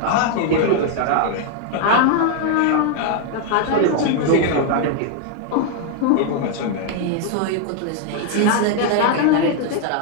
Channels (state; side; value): different; both; correlation 0.00